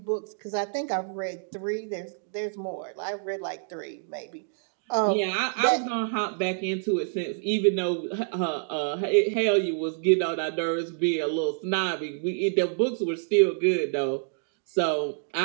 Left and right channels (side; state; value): left; silent; digital silence